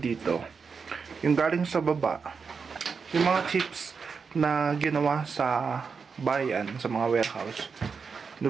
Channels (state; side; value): quieter; left; 5.5 dB